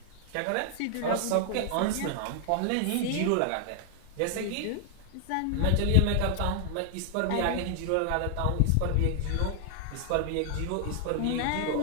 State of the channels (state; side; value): different; both; correlation 0.00